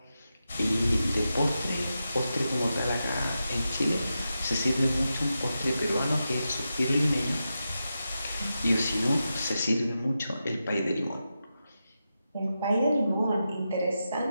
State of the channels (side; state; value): both; inverted; correlation -0.89